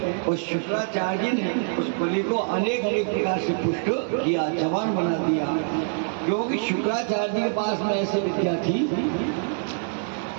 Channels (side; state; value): left; silent; 62 dB below the other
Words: और शुक्राचार्य जी ने उस बलि को अनेक प्रकार से पुष्ट किया, जवान बना दिया। क्योंकि शुक्राचार्य जी के पास में ऐसी विद्या थी